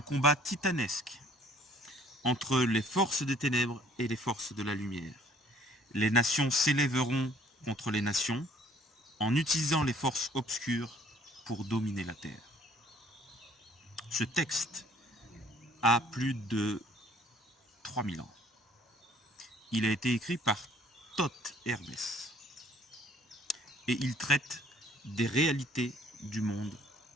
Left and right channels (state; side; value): normal; both; correlation 0.58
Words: combat titanesque entre les forces des ténèbres et les forces de la lumière. Les nations s'élèveront contre les nations en utilisant les forces obscures pour dominer la Terre. Ce texte a plus de 3000 ans. Il a été écrit par Thoth Hermès et il traite des réalités du monde